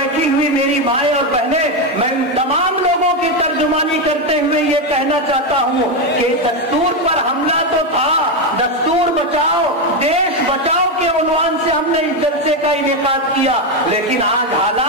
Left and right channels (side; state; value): both; normal; correlation 0.08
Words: ہوئی میری مائیں اور بہنیں, میں تمام لوگوں کی ترجمانی کرتے ہوئے یہ کہنا چاہتا ہوں کہ دستور پر حملہ تو تھا, دستور بچاؤ دیش بچاؤ کے عنوان سے ہم نے اس جلسے کا انعقاد کیا, لیکن آج